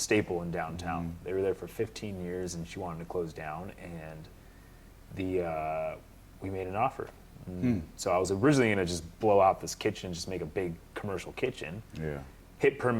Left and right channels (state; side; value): identical; both; correlation 1.00